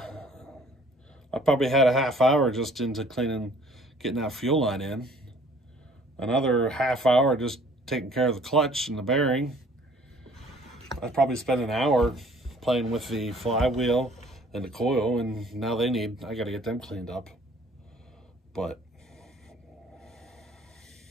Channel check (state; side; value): normal; both; correlation 0.55